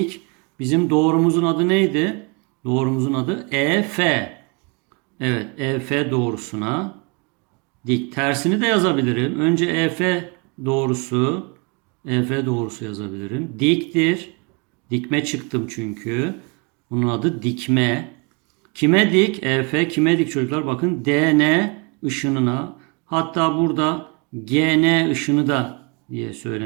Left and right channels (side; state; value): left; quieter; 31.7 dB